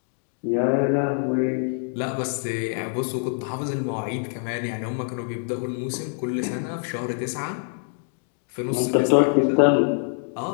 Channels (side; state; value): right; silent; 62 dB below the other